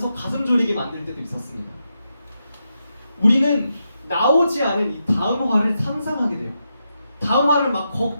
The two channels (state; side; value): inverted; both; correlation -0.85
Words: 가슴 졸이게 만들 때도 있었습니다. 우리는 나오지 않은 이 다음 화를 상상하게 돼요. 다음 화를 막